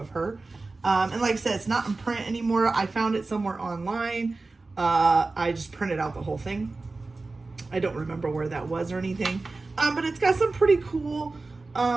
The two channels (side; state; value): left; quieter; 3.5 dB